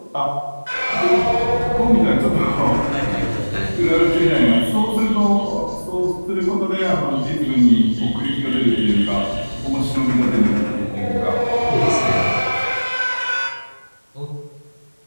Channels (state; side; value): inverted; both; correlation -1.00